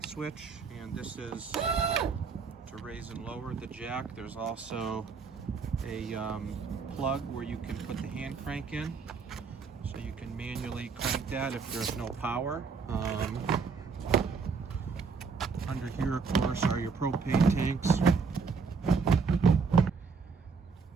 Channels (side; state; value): left; quieter; 5.1 dB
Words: switch, and this is to raise and lower the jack. There's also a plug where you can put the hand crank in, so you can manually crank that if there's no power. Under here, of course, are your propane tanks.